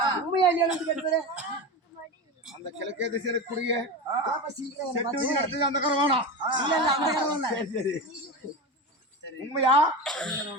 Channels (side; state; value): both; normal; correlation 0.23